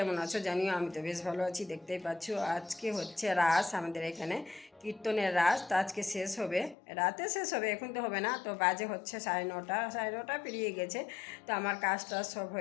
আছো জানিও, আমি তো বেশ ভালো আছি। দেখতেই পাচ্ছ আজকে হচ্ছে রাস, আমাদের এখানে কীর্তনের রাস। তো আজকে শেষ হবে, রাতে শেষ হবে, এখন তো হবে না। তো বাজে হচ্ছে 9:30 পেরিয়ে গেছে। তো আমার কাজটা সব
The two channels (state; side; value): drops out; right; at 6.8 s